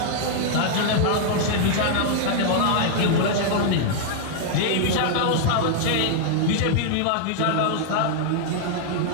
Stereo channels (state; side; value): different; both; correlation -0.01